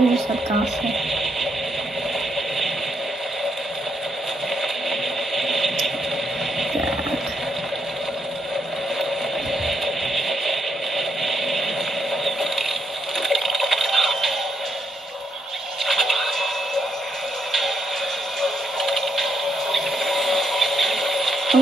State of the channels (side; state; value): both; normal; correlation 0.77